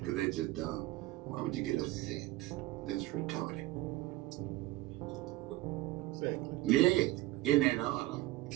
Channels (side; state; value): left; quieter; 17.9 dB